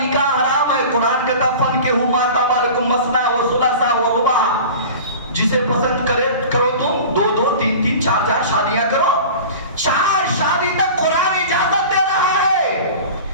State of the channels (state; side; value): inverted; both; correlation -0.37